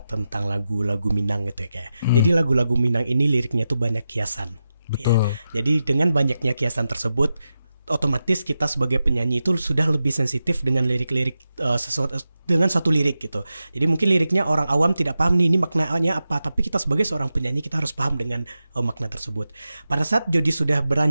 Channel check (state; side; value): inverted; both; correlation -0.90